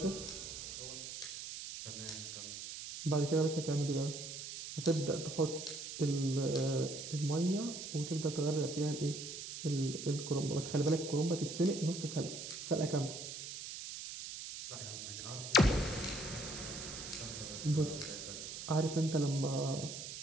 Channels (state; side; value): noise; right; hiss, 8 dB below the sound